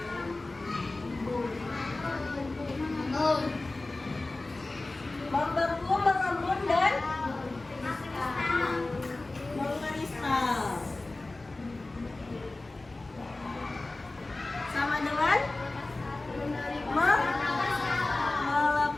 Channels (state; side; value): quieter; right; 3.0 dB